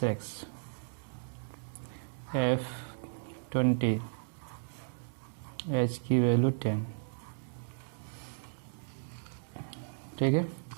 x, F 20, H की वैल्यू 10, ठीक है।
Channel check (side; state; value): left; silent; digital silence